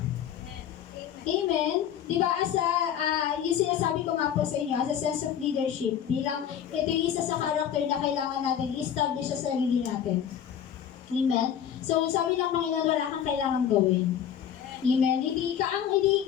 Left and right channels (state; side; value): quieter; right; 9.2 dB